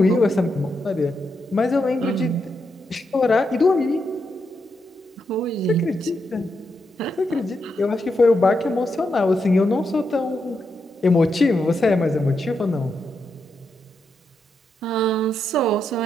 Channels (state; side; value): normal; both; correlation 0.83